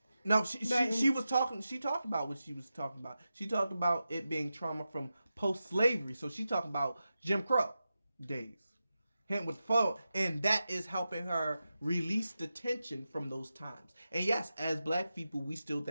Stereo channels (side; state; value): both; inverted; correlation -0.91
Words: No, she was talking. She talked about what she was talking about. She talked about it being trauma from post-slavery. So she talked about Jim Crow days, him with phone, and that is helping her release the tension from those times. And yes, as black people, we still